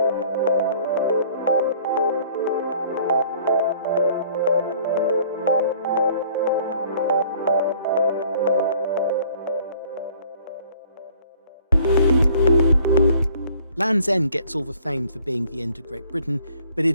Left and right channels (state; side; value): inverted; both; correlation -0.55